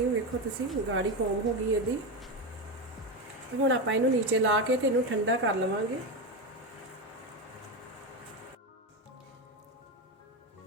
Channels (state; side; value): normal; both; correlation 0.15